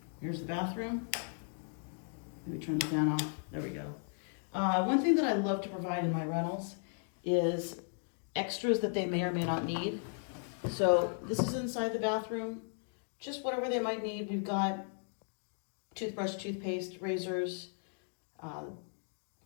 here's the bathroom. Let me turn the fan off. There we go. One thing that I love to provide in my rentals is extras that they may or may not need. So this is inside the bathroom, just whatever they might need. We've got toothbrush, toothpaste, razors,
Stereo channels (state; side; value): silent; right; 54 dB below the other